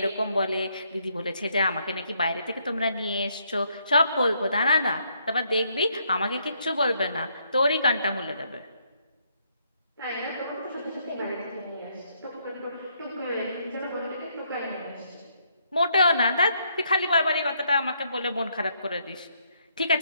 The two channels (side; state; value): both; inverted; correlation -0.72